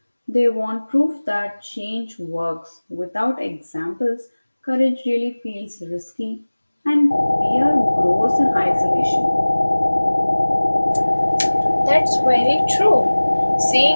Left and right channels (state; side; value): inverted; both; correlation -1.00